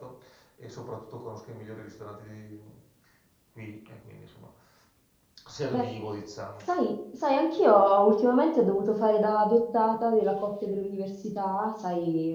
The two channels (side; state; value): both; identical; correlation 1.00